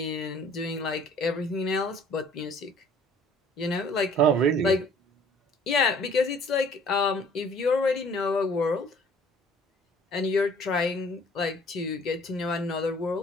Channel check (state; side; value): normal; both; correlation 0.54